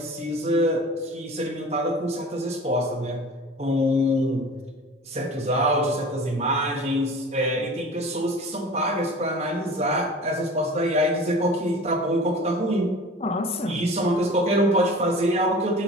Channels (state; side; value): normal; both; correlation 0.40